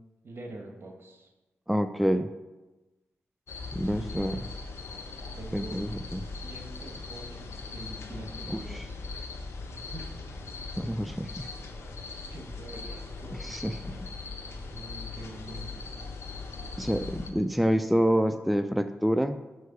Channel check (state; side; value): normal; both; correlation 0.93